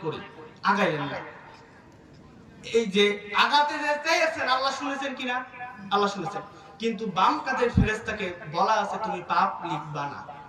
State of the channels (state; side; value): identical; both; correlation 1.00